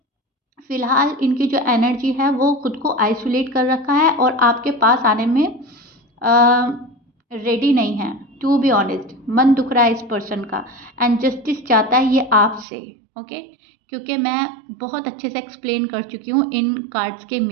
फिलहाल इनकी जो एनर्जी है वो खुद को आइसोलेट कर रखा है और आपके पास आने में रेडी नहीं है। टू बी ऑनेस्ट, मन दुख रहा है इस पर्सन का, एंड जस्टिस चाहता है ये आपसे। ओके, क्योंकि मैं बहुत अच्छे से एक्सप्लेन कर चुकी हूँ इन कार्ड्स के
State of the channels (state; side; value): drops out; left; at 12.7 s